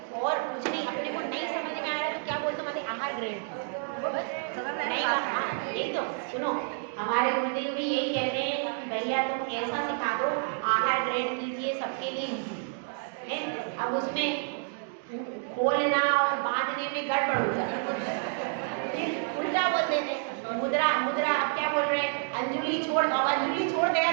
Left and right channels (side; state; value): left; silent; 58 dB below the other